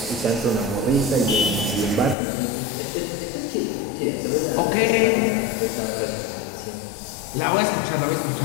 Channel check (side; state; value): right; drops out; at 2.1 s